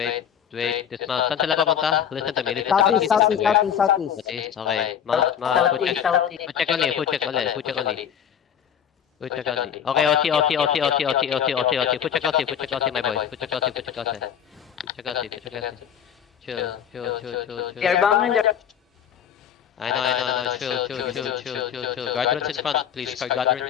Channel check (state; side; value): quieter; right; 8.8 dB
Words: Wait. Dismount. Saan sila papunta? Listen to me. Southeast. Okay. Mount. Food check only. Food check only. Okay, OT. Food check OT, my boy. Food check OT. Chill. They're bombing the... I know. Chill. Guardrails in front, please.